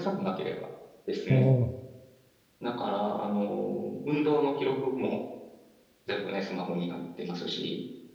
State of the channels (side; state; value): both; identical; correlation 1.00